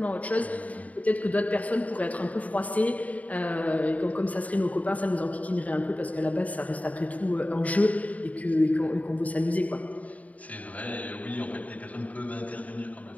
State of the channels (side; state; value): right; late; 0.071 ms